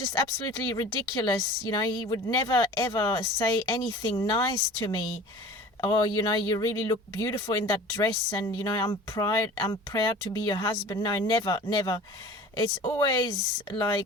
absolutely ridiculous. He would never, ever say anything nice to me. Oh, you really look beautiful in that dress, and I'm proud to be your husband. No, never. It's always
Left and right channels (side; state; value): both; normal; correlation 0.41